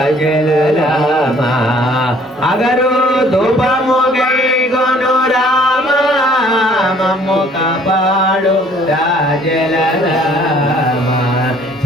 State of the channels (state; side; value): normal; both; correlation 0.57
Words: రామ అగరు ధూపము గైకొను రామ మమ్ము కాపాడు రాజల రామ